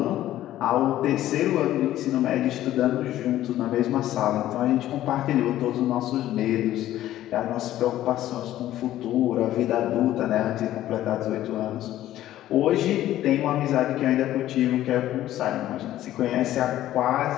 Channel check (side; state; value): right; quieter; 13.5 dB